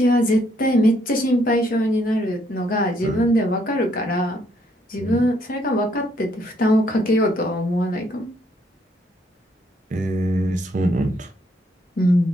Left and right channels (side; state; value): both; normal; correlation 0.70